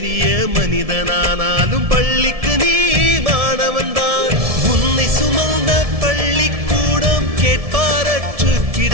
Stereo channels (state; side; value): late; left; 1.7 ms